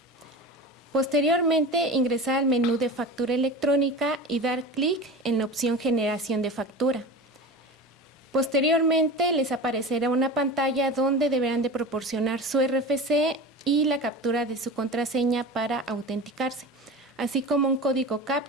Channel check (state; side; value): normal; both; correlation 0.31